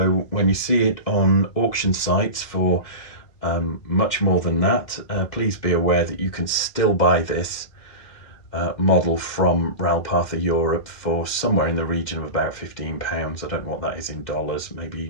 when you see it on auction sites for much more than that, please be aware that you can still buy this model from Ralpartha Europe for somewhere in the region of about £15. I don't know what that is in dollars,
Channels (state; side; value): late; right; 2.4 ms